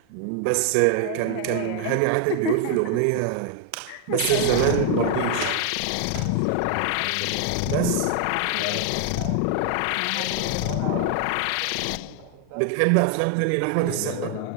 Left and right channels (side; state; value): both; different; correlation 0.00